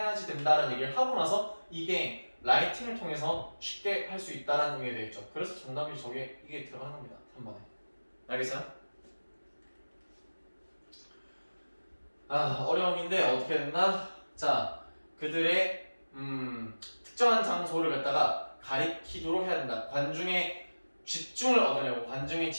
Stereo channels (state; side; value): inverted; both; correlation -1.00